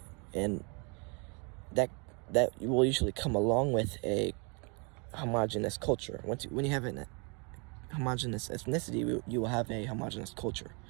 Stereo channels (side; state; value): left; quieter; 33.4 dB